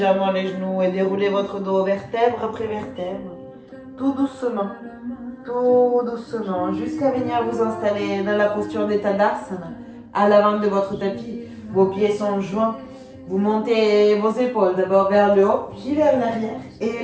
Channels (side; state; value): both; identical; correlation 1.00